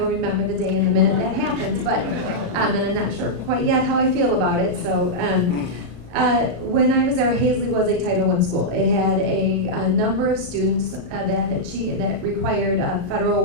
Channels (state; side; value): late; left; 34 ms